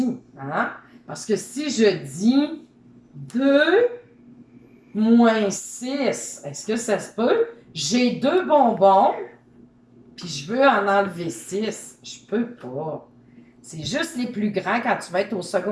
Parce que si je dis 2 moins 6, est-ce que ça se peut? J'ai 2 bonbons, puis je veux en enlever 6. Je peux pas. C'est juste les plus grands quand tu vas être au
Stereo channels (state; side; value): identical; both; correlation 1.00